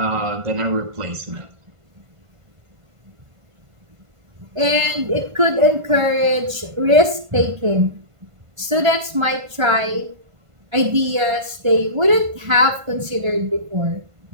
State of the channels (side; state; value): left; late; 1.5 ms